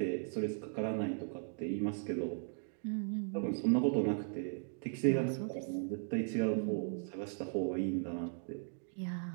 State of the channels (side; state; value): left; silent; 53 dB below the other